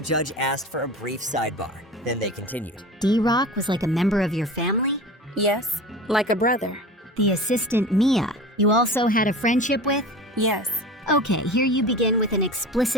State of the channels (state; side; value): normal; both; correlation 0.34